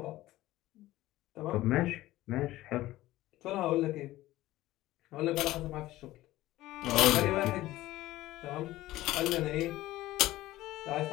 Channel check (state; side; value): quieter; right; 16.4 dB